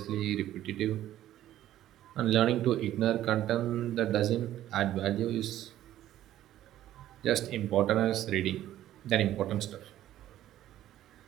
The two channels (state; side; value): quieter; left; 13.0 dB